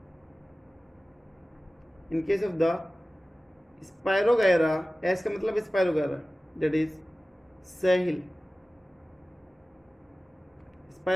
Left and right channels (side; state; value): both; normal; correlation 0.97